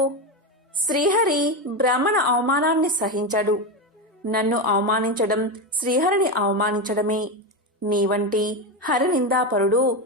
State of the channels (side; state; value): both; normal; correlation 0.14